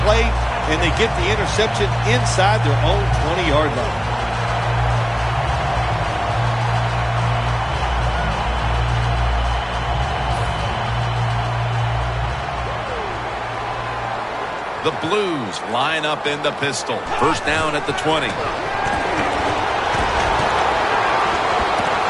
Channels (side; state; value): both; identical; correlation 1.00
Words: play, and they get the interception inside their own 20-yard line. The Blues line up in the pistol. First down at the 20. And